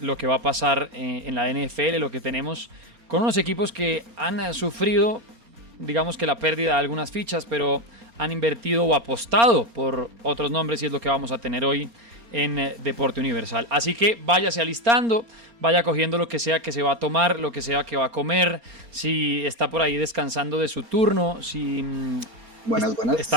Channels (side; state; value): left; late; 4.3 ms